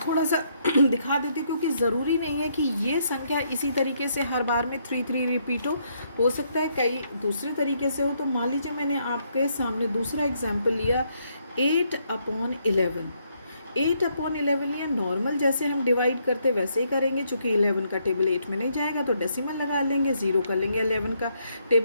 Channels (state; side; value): inverted; both; correlation -0.74